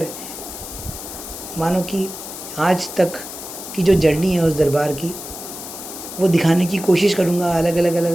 मानो कि आज तक की जो जर्नी है उस दरबार की, वो दिखाने की कोशिश करूँगा अलग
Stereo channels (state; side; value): noise; left; hiss, 10 dB below the sound